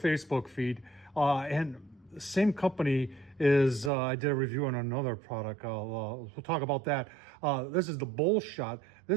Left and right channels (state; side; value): drops out; left; at 3.9 s